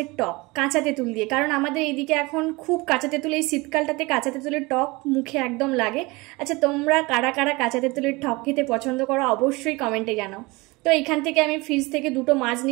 টক কাঁচা তেঁতুল দিয়ে। কারণ আমাদের এইদিকে এখন খুব কাঁচা তেঁতুল, এই শীতকালটাতে কাঁচা তেঁতুলের টক মুখে একদম লাগে। আচ্ছা, তোমরা কারা কারা কাঁচা তেঁতুলের টক খেতে পছন্দ করো অবশ্যই কমেন্টে জানাও। তো এইখান থেকে আমি ফ্রিজ থেকে দুটো মাছ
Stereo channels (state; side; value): quieter; left; 23.8 dB